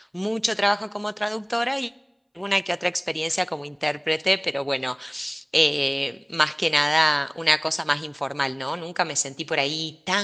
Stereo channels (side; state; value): both; identical; correlation 1.00